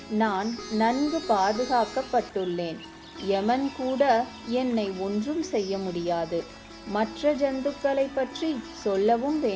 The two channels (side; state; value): both; identical; correlation 1.00